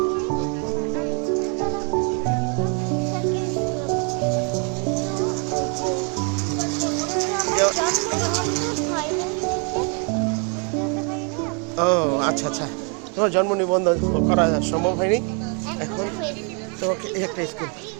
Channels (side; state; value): left; quieter; 37.5 dB